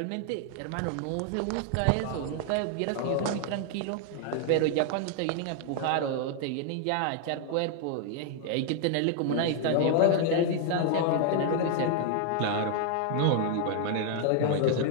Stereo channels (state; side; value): different; both; correlation 0.00